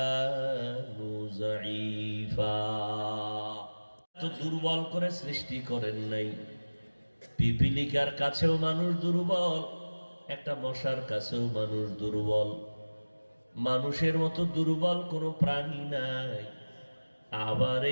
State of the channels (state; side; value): inverted; both; correlation -1.00